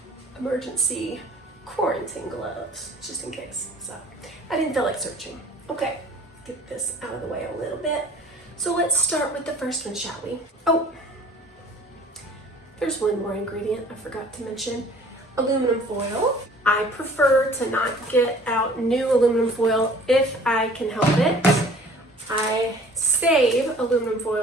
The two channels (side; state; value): both; normal; correlation 0.50